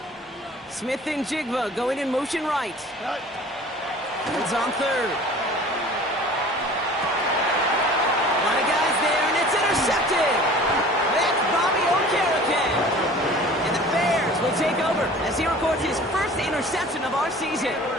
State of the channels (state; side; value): normal; both; correlation 0.45